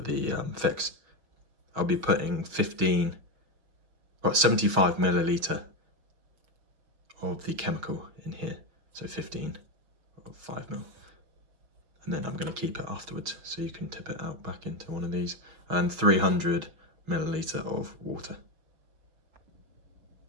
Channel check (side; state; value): left; late; 6.3 ms